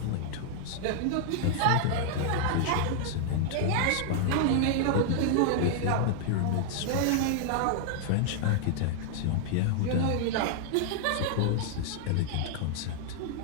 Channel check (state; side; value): different; both; correlation 0.00